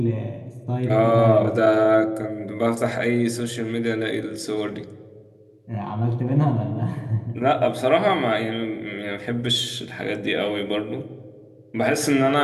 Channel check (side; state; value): both; identical; correlation 1.00